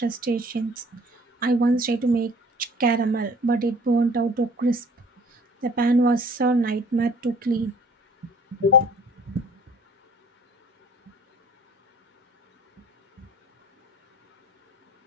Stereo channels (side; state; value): both; normal; correlation 0.53